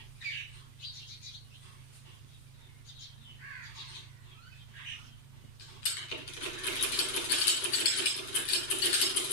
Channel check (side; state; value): right; late; 7.9 ms